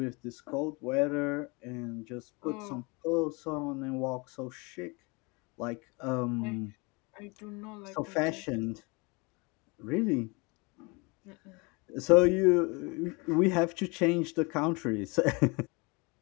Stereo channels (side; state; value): right; quieter; 28.2 dB